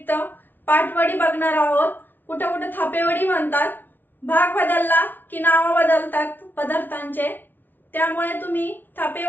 पाटवडी बघणार आहोत। कुठे कुठे थापेवडी म्हणतात, भाग बदलला की नाव बदलतात पदार्थांचे, त्यामुळे तुम्ही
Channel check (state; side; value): late; right; 0.090 ms